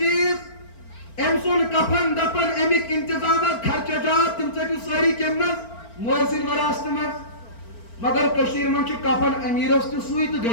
أمۍ سُنٛد کفن دفن امیک انتظامات خرچات تم ژٔٹِو سٲری کمہِ منٛز مٲلۍ سٕنٛدِ وراثتہٕ منٛز مگر کشیٖرِ منٛز چھُ کفن امیٖرس تہِ سُے تہٕ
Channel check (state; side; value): late; right; 4.4 ms